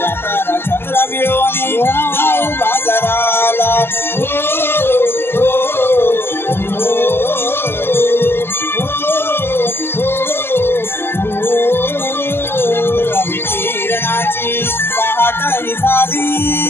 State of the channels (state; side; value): late; right; 0.11 ms